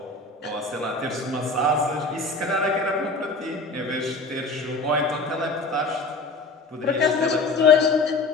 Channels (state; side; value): quieter; right; 3.2 dB